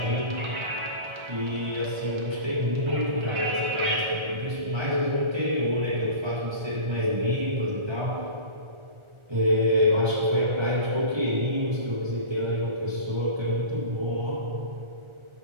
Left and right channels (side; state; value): left; late; 1.4 ms